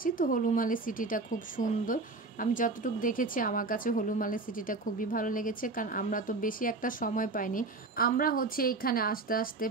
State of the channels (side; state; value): left; quieter; 3.6 dB